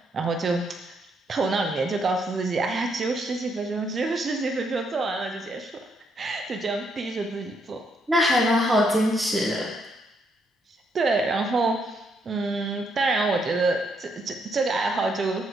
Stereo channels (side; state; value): both; normal; correlation 0.75